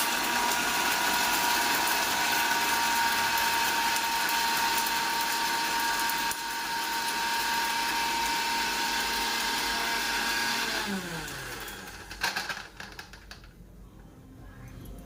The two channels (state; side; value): identical; both; correlation 1.00